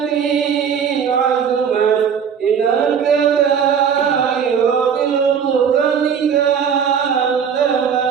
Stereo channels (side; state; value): left; quieter; 7.3 dB